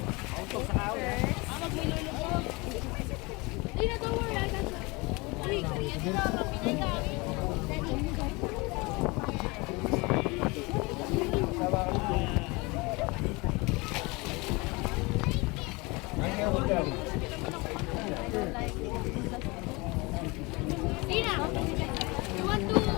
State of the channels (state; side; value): quieter; right; 25.6 dB